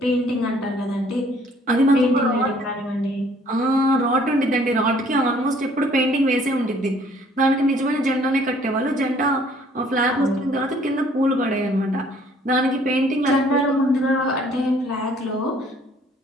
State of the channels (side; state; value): both; normal; correlation 0.59